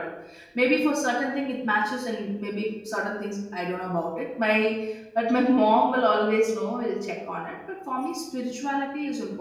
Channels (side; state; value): both; identical; correlation 1.00